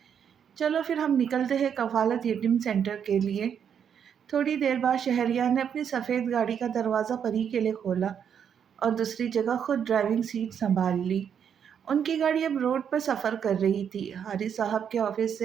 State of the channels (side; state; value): left; quieter; 8.0 dB